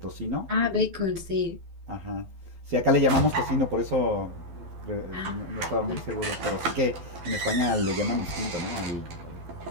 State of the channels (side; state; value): left; late; 12 ms